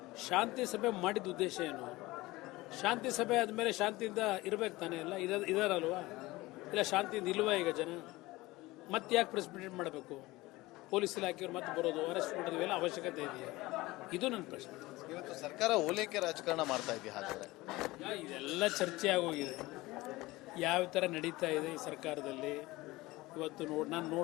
ಶಾಂತಿ ಸಭೆ ಮಾಡಿದ ಉದ್ದೇಶ ಏನು? ಶಾಂತಿ ಸಭೆ ಆದಮೇಲೆ ಶಾಂತಿಯಿಂದ ಇರಬೇಕು ತಾನೇ? ಎಲ್ಲ ಇದಾರಲ್ವಾ? ಇಲ್ಲ ಶಾಂತಿಯಿಂದ ಇಲ್ವಾ ಈಗ ಜನ? ಮತ್ತೆ ಯಾಕೆ ಪ್ರೆಸ್ ಮೀಟ್ ಮಾಡಬೇಕು? ಪೊಲೀಸ್ ಇಲಾಖೆಯವ್ರು ಮತ್ತೆ ಬರೋದು, ಅರೆಸ್ಟ್ ಮಾಡೋದು, ಇವೆಲ್ಲ ಅವಶ್ಯಕತೆ ಇದೆಯಾ? ಇದು ನನ್ನ ಪ್ರಶ್ನೆ. ಇವತ್ತು ಸರ್ಕಾರ ಓಲೈಕೆ ರಾಜಕಾರಣ ಮಾಡ್ತಾ ಇದೆಯಾ? ಹಾಗಾದ್ರೆ ಇದೆಲ್ಲ ಚರ್ಚೆ ಆಗೋಗಿದೆ. ಯಾವ ಥರ ನಡೀತಾ ಇದೆ ಈ ಸರ್ಕಾರದಲ್ಲಿ. ಇವತ್ತು ನಾನು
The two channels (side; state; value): right; quieter; 20.0 dB